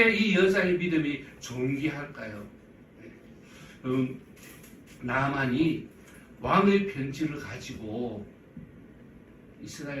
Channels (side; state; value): both; identical; correlation 1.00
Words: 이 여자의 믿음이 존귀할까요? 네. 나만이 왕의 편지를 가지고